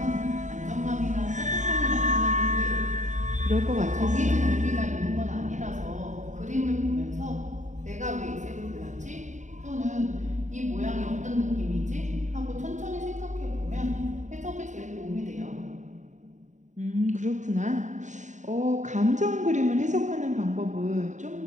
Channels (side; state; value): left; late; 0.35 ms